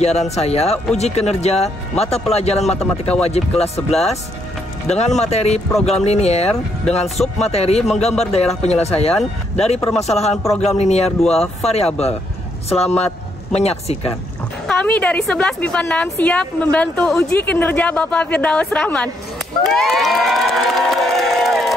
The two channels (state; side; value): normal; both; correlation 0.74